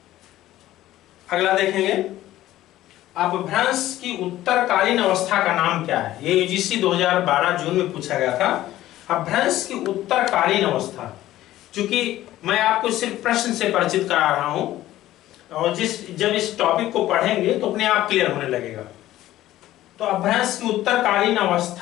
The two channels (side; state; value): right; quieter; 14.6 dB